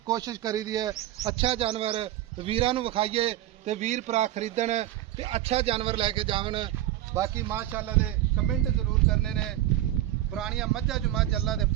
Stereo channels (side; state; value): left; quieter; 13.8 dB